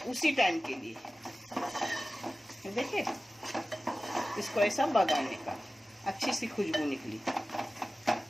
उसी टाइम के लिए। देखिए इसको ऐसा बगाने का, अच्छी सी खुशबू निकली।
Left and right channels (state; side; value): normal; both; correlation 0.96